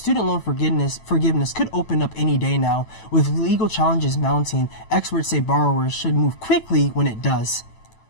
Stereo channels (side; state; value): right; late; 9.1 ms